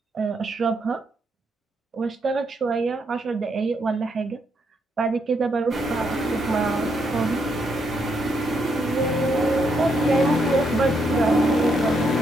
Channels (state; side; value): normal; both; correlation 0.77